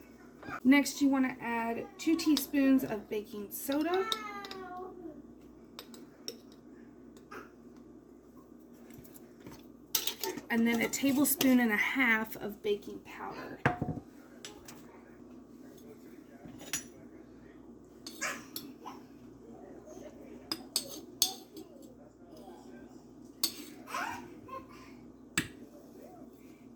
Next, you want to add 2 teaspoons of baking soda. And then 1.5 tablespoons of baking powder.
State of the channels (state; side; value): identical; both; correlation 1.00